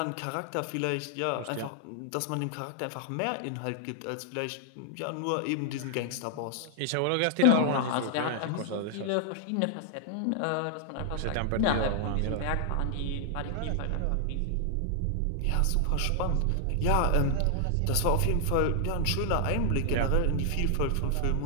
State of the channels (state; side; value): different; both; correlation 0.00